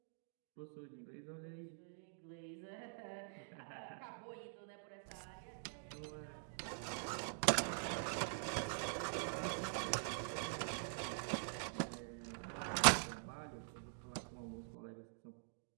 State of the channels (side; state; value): left; silent; digital silence